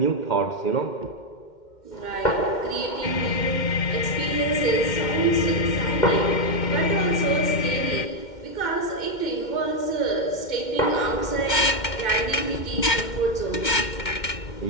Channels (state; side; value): late; right; 2.1 ms